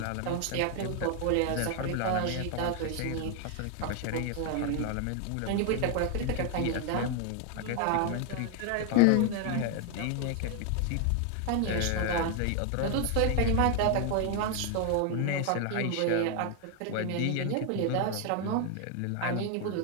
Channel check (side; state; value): both; different; correlation 0.00